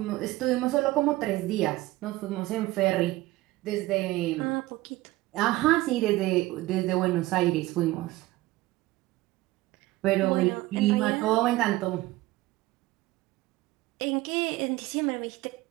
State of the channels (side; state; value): left; quieter; 18.3 dB